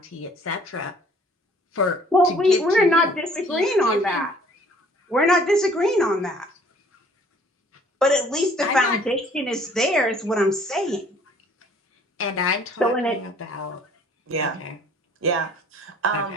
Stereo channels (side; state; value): both; normal; correlation 0.56